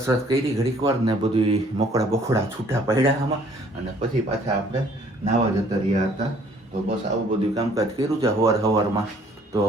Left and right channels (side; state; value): both; normal; correlation 0.59